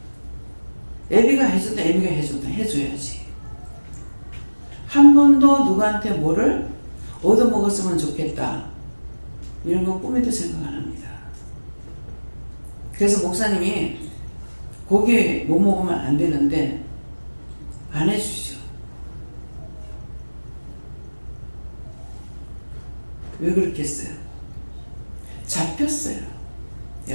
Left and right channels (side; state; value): both; inverted; correlation -1.00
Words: 애비가 해줬다, 애비가 해줬다, 해줘야지. 한 번도 누구한테 뭐를 얻어먹었으면 좋겠다, 이런 거 꿈에도 생각 안 합니다. 그래서 목사님이 고기 못 먹으면 안 되는데 안 해주시죠. 왜 그렇겠어요? 잡혔어요. 예,